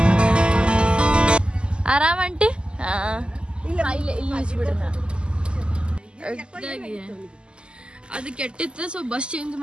ಆರಾಮ್ ಆಂಟಿ? ಅದು ಕೆಟ್ಟಿತ್ತು. ಸೊ ಬಸ್ ಚೇಂಜ್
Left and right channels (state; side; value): late; left; 0.050 ms